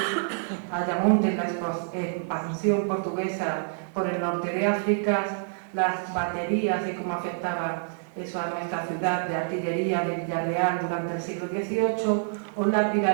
Ayamonte en la expansión portuguesa por el norte de África, las baterías y cómo afectaba eso a nuestra ciudad de artillería de Villarreal durante el siglo XVIII o la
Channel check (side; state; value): left; silent; 60 dB below the other